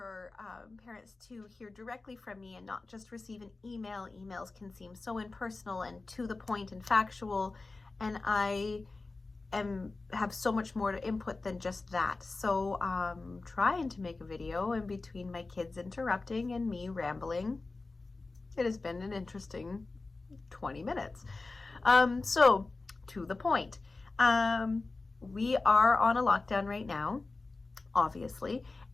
parents to hear directly from me and not just receive an email. Emails can seem so impersonal and to the point and factual, and I have so much more to input than just that. So trying to make a video, and between my kids interrupting and me rambling, it has been an interesting 20 minutes. So to the point, we are on a lockdown right now, obviously,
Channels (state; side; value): quieter; right; 3.6 dB